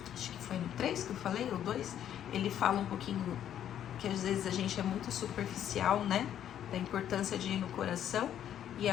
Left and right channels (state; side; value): quieter; right; 10.3 dB